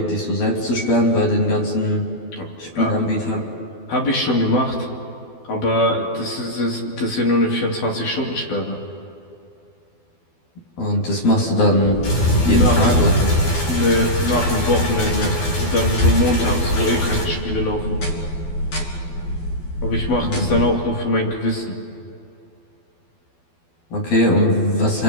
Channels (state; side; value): late; right; 12 ms